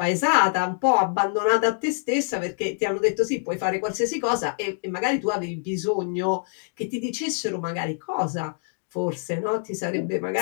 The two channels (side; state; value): right; silent; digital silence